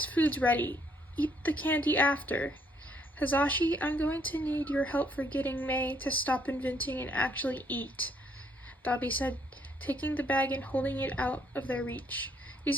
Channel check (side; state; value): both; normal; correlation 0.69